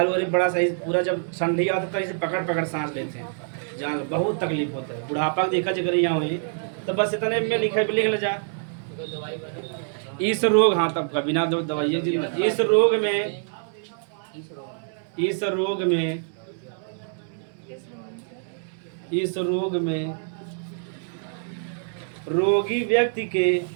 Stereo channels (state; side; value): silent; left; 61 dB below the other